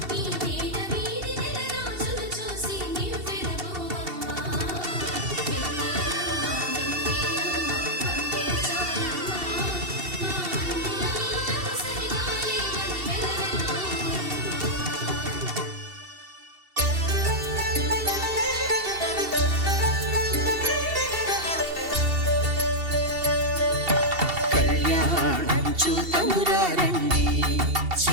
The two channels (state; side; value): late; left; 2.7 ms